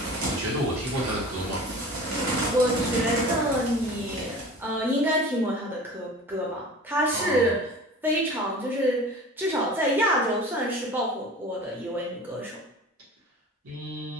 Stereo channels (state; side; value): normal; both; correlation 0.39